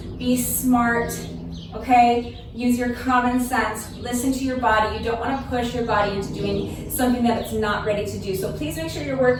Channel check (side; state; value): both; identical; correlation 1.00